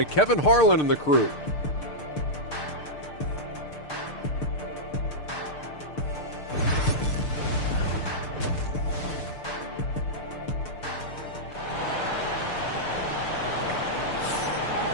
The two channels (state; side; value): late; right; 6.7 ms